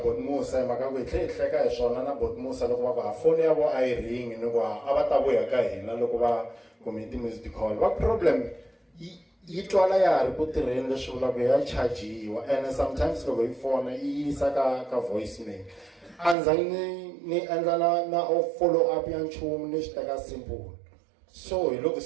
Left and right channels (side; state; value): left; drops out; at 16.4 s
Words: Musa hi mhaka ku hi tlhe hi hleka hi swona na Boss Musa loko va ku ha foni ya vo a yi ringi, ni ku a va ta vuya ka hina loko va kume ti-music call. Va problem yi twala ya ha ri ku tirheni leswi vulaka ya chajiwa, and sometimes loko yi fona yi yisa ka voicemail. A ndzhaku ni endla na follow up ya nchumu ni swi teka simple, so hi loko